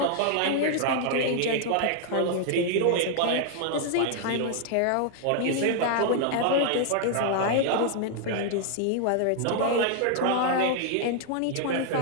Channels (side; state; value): both; different; correlation 0.00